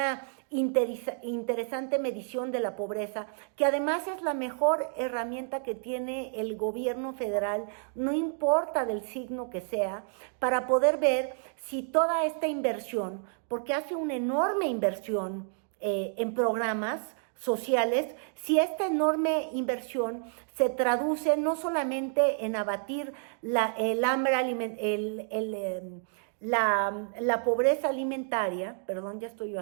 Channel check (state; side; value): silent; left; 58 dB below the other